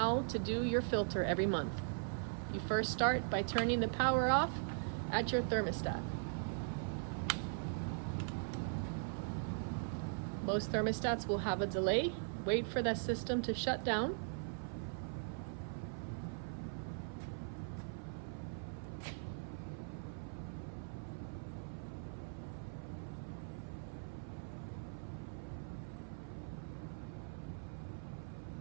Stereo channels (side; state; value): left; silent; 51 dB below the other